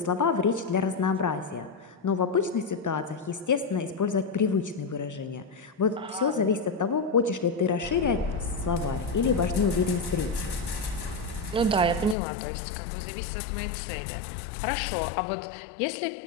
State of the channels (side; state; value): right; drops out; at 12.2 s